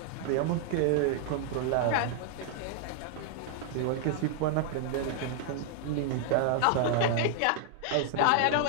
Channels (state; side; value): different; both; correlation 0.00